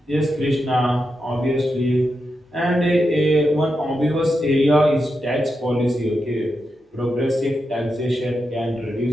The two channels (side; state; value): both; normal; correlation 0.87